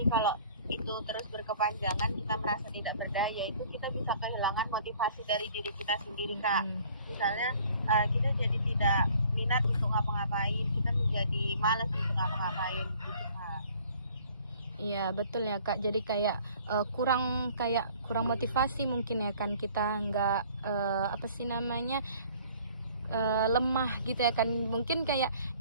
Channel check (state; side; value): inverted; both; correlation -0.54